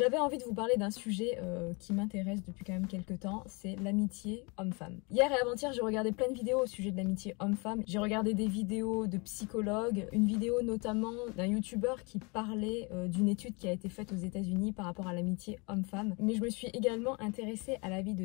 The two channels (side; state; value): right; quieter; 29.7 dB